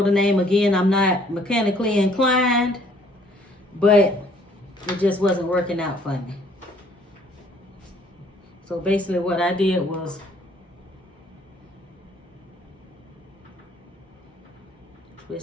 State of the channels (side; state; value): both; normal; correlation 0.61